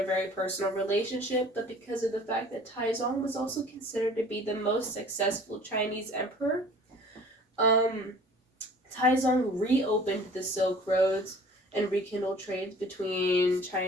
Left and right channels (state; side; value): normal; both; correlation 0.48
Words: very personal relationship, but because of the fact that Taizong was also considered to be the most successful Chinese emperor. Taizong reopened the Silk Roads and rekindled trades between